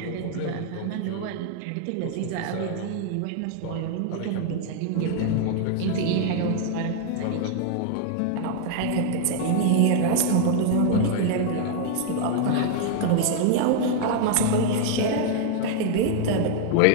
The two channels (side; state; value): both; different; correlation 0.00